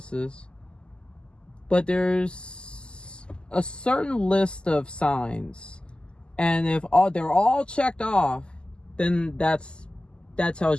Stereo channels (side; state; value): right; late; 0.049 ms